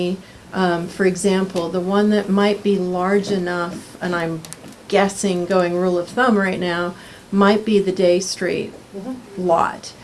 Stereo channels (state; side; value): identical; both; correlation 1.00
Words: for example, the one that might be large enough, and I'm guessing going rule of thumb right now, might be the Day Street lot